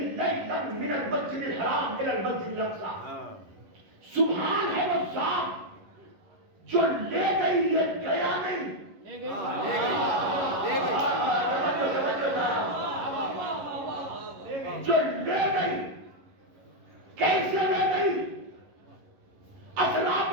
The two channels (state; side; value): late; left; 11 ms